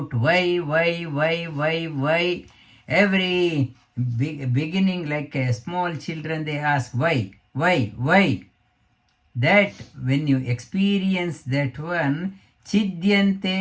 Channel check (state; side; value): identical; both; correlation 1.00